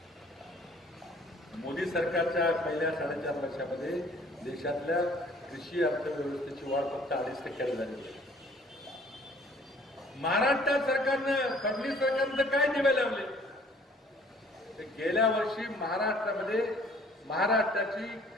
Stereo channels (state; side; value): normal; both; correlation 0.56